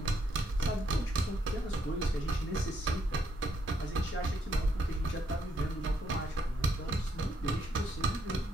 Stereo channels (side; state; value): both; normal; correlation 0.73